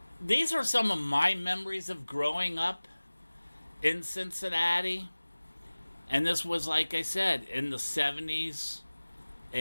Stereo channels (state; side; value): inverted; both; correlation -1.00